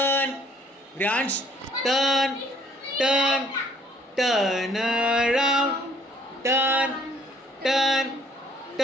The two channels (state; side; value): normal; both; correlation 0.61